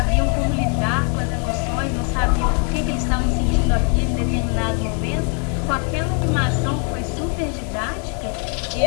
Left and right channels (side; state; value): right; quieter; 38.6 dB